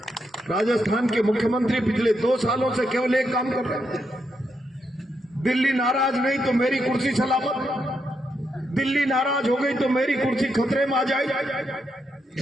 राजस्थान के मुख्यमंत्री पिछले 2 सालों से केवल एक काम कर रहे हैं, दिल्ली नाराज नहीं तो मेरी कुर्सी सलामत, दिल्ली नाराज हो गई तो मेरी कुर्सी खतरे में आ जाए,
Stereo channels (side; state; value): both; normal; correlation 0.81